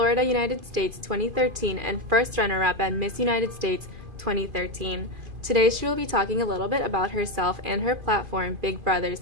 United States 2013 and first runner-up at Miss United States 2013. Today she will be talking a little bit about herself and her platform, Big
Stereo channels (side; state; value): left; late; 2.5 ms